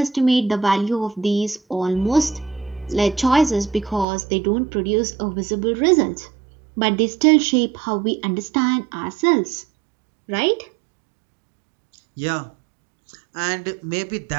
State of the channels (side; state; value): left; drops out; at 4.0 s